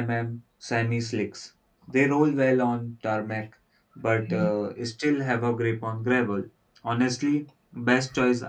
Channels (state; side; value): identical; both; correlation 1.00